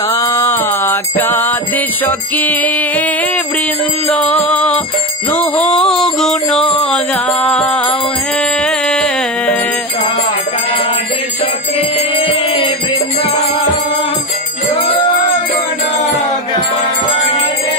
বিশাখাদি সখী বৃন্দ নুহ গুণ গাও হে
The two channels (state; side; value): normal; both; correlation 0.18